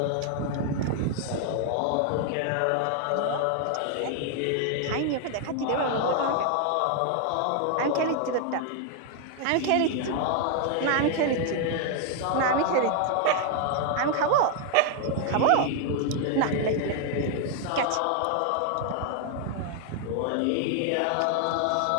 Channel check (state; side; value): different; both; correlation 0.00